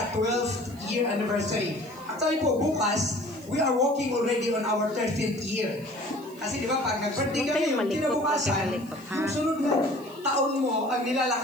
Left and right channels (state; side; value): noise; right; hiss, 24 dB below the sound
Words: year anniversary. Actually po, bukas, we are walking already on our 13th year. Kasi di ba, pag nag-birthday kami, yung kinabukasan, yung sunod mo, taon mo, ang